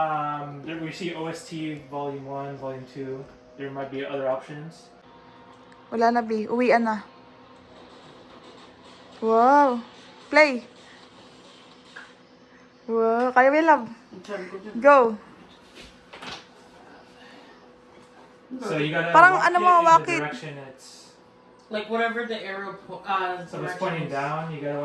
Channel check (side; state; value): both; identical; correlation 1.00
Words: there we see OST Volume 1, Volume 2. There might be other options. Wala na B. Uwian na. Wow. Play. Wow. Kaya may love. Go. So you gotta Parang walk ano it mo, in walk the it. direction it's. Like whatever the arrow So if it's pointing down, you gotta